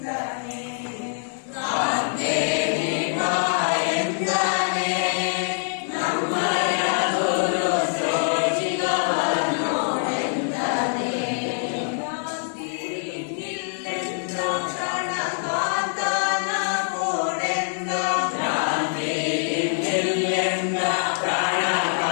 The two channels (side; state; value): right; silent; digital silence